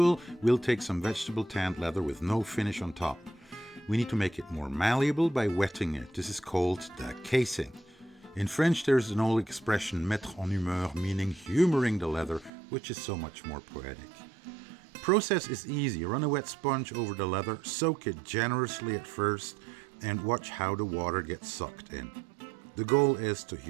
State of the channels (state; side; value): drops out; left; at 12.5 s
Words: we'll take some vegetable tanned leather with no finish on top. We need to make it more malleable by wetting it. This is called the casing. In French, there's an old expression, mettre en humeur, meaning humoring the leather, which is so much more poetic. Process is easy. Run a wet sponge over the leather, soak it generously at first, and watch how the water gets sucked in. The goal is to